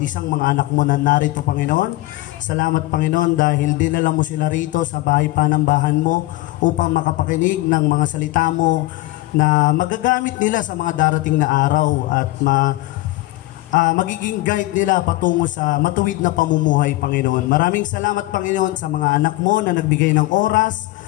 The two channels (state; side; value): quieter; right; 18.9 dB